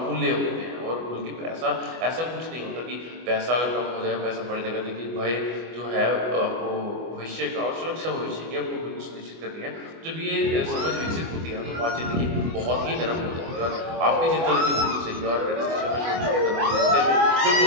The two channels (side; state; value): left; late; 24 ms